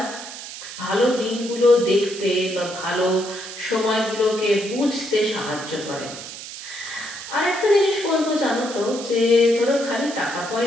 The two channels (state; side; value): noise; right; hiss, 11 dB below the sound